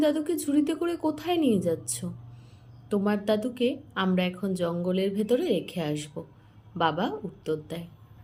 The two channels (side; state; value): both; identical; correlation 1.00